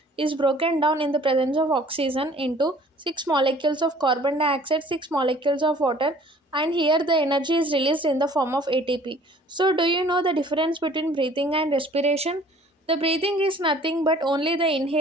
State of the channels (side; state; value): both; normal; correlation 0.53